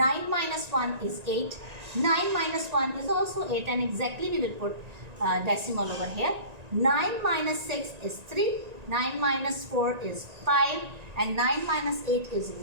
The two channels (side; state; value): left; late; 1.9 ms